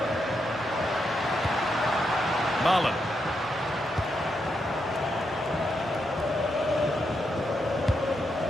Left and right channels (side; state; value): both; normal; correlation 0.82